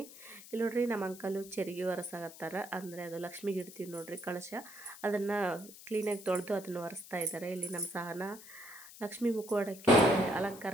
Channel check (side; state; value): left; noise; hiss, 17 dB below the sound